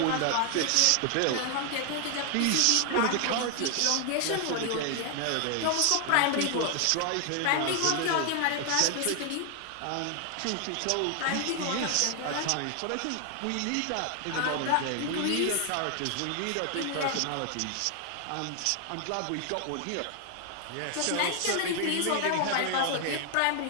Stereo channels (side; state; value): both; different; correlation 0.00